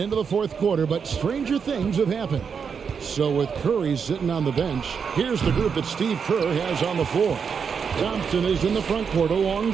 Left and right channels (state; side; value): quieter; left; 6.4 dB